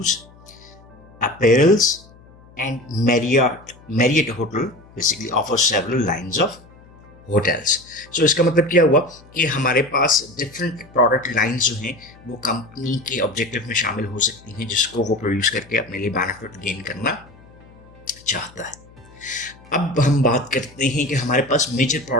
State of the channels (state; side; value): noise; left; hum, 25 dB below the sound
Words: apparels, and Marriott hotel basically offer several lines of hotels. So इसका मतलब क्या हुआ कि हमारे पास डिफरेंट प्रोडक्ट लाइंस जो हैं वो कंपनी के ऑब्जेक्टिव में शामिल हो सकती हैं, जिसको वो प्रोड्यूस करके अपने लिए बेनिफिट गेन करना चाहता है। अब हम बात करते हैं कि हमारे पास मेजर